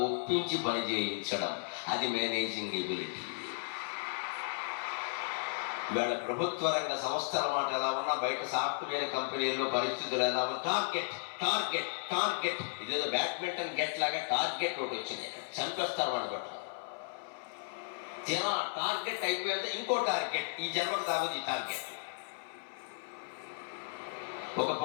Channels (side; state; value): right; silent; 55 dB below the other